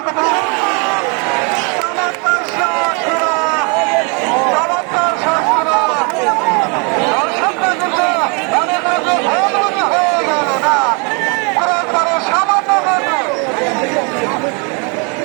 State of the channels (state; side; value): quieter; left; 34.0 dB